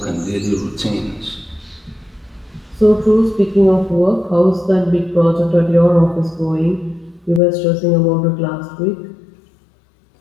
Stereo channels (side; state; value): right; drops out; at 7.4 s